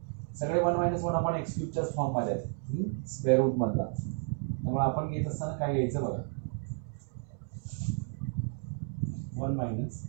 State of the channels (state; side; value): silent; left; 56 dB below the other